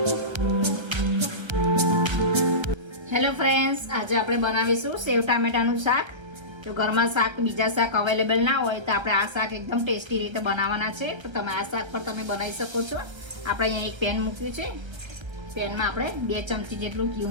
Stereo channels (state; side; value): late; left; 1.3 ms